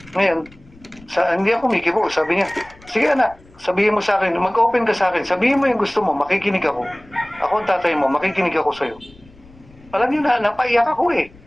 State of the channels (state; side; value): noise; left; rumble, 25 dB below the sound